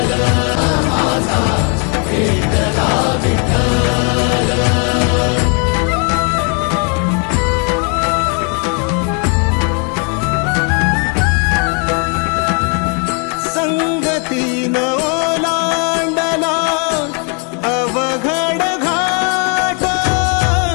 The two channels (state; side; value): quieter; right; 38.0 dB